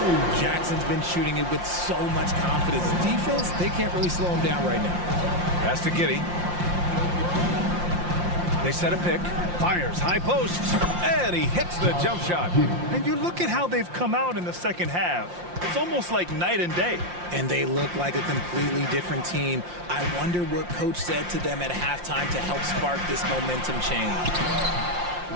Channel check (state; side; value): late; left; 5.7 ms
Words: Jackson's been shooting it with so much confidence. Defense, they can't really slow him down right now. Pass to Giddey. They set a pick. Fires high post. And he hits the jump shot. And you look at how they've come out in the second half. It's almost like night and day. And they look like a completely different team. I wonder what coach said to them at halftime to help spark this momentum change.